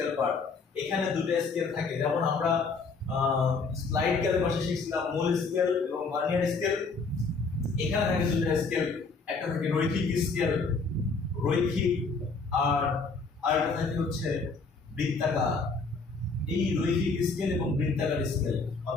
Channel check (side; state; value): right; quieter; 4.3 dB